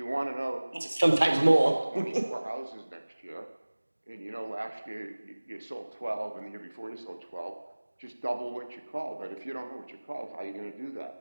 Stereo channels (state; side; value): inverted; both; correlation -1.00